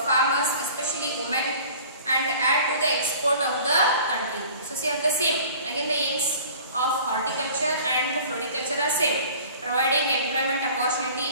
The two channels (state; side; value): inverted; both; correlation -0.46